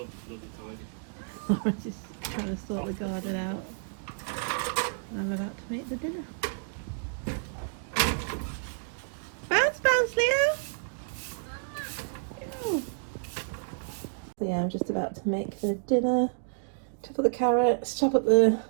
Lawrence is trying to sort the garden out. And I'm about to make the dinner. Bounce, bounce, Leo! Ew. So yeah, I'm just about to make the dinner. Chop up the carrots, chop up the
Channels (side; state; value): left; silent; digital silence